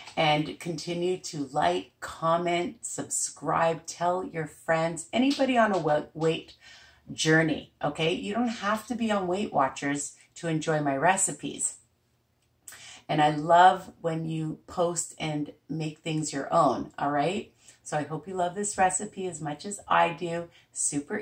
and continue to like, comment, subscribe, tell your friends, anybody on a weight journey, okay? You don't have to be on Weight Watchers to enjoy my recipes. And I love when you post and make things your own, all right? So I hope you love this recipe as much as I do. Super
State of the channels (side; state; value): both; identical; correlation 1.00